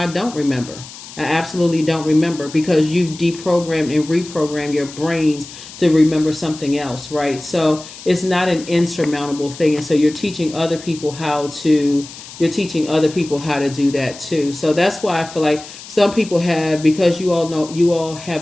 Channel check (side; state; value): left; noise; hiss, 15 dB below the sound